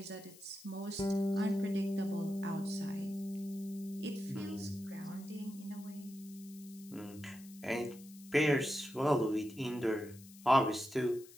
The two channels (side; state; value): left; noise; hiss, 20 dB below the sound